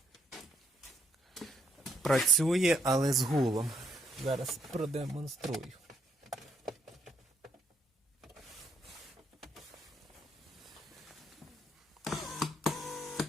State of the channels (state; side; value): normal; both; correlation 0.73